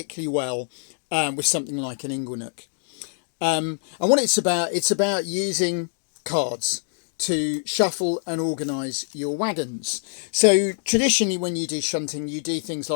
well with something like an inglenook. And what it's about using cards to shuffle and organise your wagons. So traditionally when you do shunting, you do things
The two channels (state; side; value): silent; right; digital silence